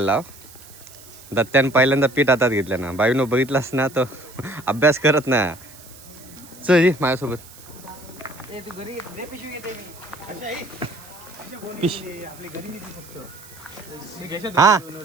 दत्त्यान पहिल्यांदा पीठ हातात घेतलं ना. बाईनो बघितलास ना, तो अभ्यास करत ना. चल माझ्यासोबत. हा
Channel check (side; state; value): right; noise; hiss, 20 dB below the sound